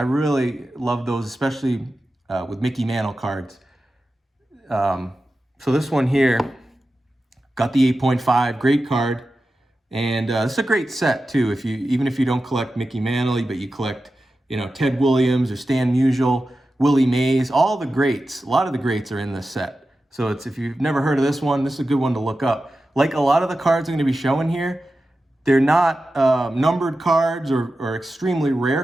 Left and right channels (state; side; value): normal; both; correlation 0.93